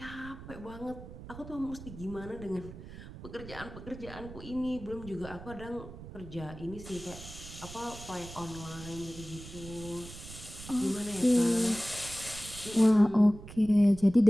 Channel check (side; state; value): right; noise; rumble, 14 dB below the sound